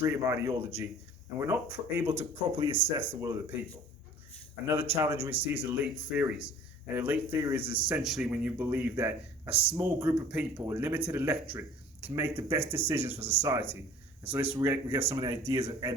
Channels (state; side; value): normal; both; correlation 0.47